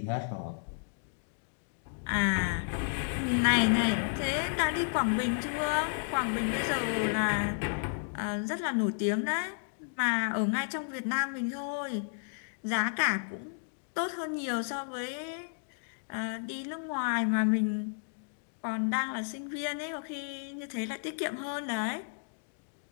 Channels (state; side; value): silent; right; digital silence